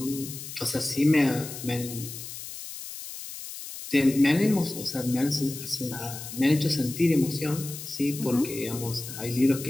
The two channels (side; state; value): left; noise; hiss, 10 dB below the sound